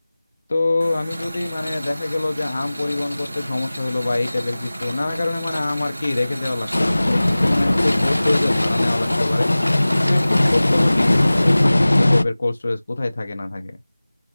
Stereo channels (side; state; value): both; inverted; correlation -0.99